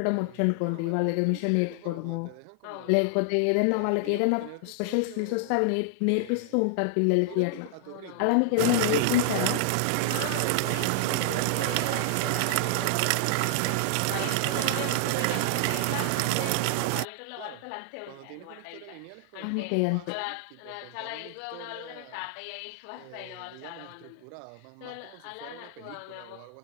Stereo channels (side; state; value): both; different; correlation 0.00